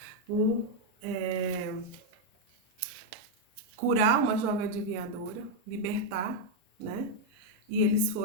por curar uma jovem adivinhadora, libertar, né? E eles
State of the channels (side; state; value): both; normal; correlation 0.00